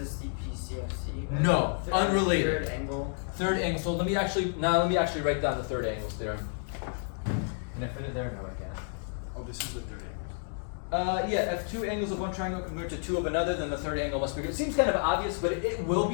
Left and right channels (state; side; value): silent; right; 58 dB below the other